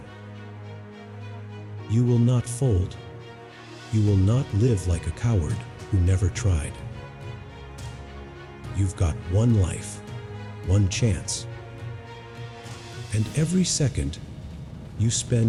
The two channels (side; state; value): both; identical; correlation 1.00